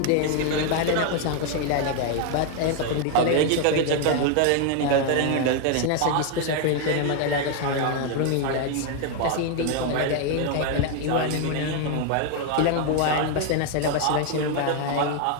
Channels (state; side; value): different; both; correlation 0.01